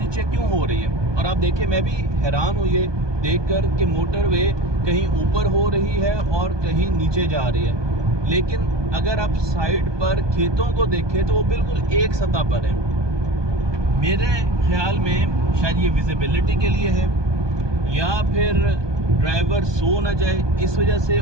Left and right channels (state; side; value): late; left; 1.2 ms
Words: क्यों हो रही है। और आप देखिए, मैं भी हैरान हुई है देखकर कि मोटरवे कहीं ऊपर हो रही है और कहीं नीचे जा रही है, लेकिन अगर आप साइड पर खेतों को देखें तो वो बिल्कुल एक सतह पर है। मेरे ख्याल में शायद ये विजिबिलिटी के लिए है या फिर ड्राइवर सो न जाए, इस वजह से